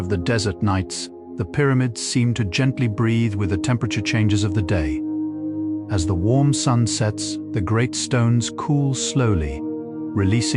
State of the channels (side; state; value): both; identical; correlation 1.00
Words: the desert nights, the pyramids seem to gently breathe with the temperature changes of the day. As the warm sun sets, the great stones cool slowly,